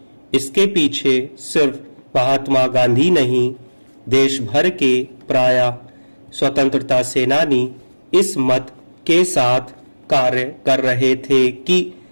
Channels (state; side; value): inverted; both; correlation -1.00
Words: इसके पीछे सिर्फ महात्मा गांधी नहीं, देश भर के प्राय स्वतंत्रता सेनानी इस मत के साथ कार्य कर रहे थे कि